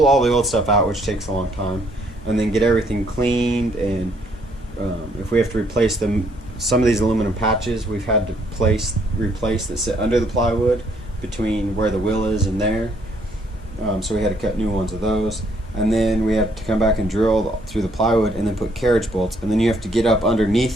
all the old stuff out, which takes a long time, and then get everything cleaned. And if we have to replace some of these aluminum patches we've had to replace that sit under the plywood between where the wheel is and there. So we had to cut new ones of those. And then we have to come back and drill through the plywood and then put carriage bolts. And then you have to get up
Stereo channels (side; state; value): both; normal; correlation 0.68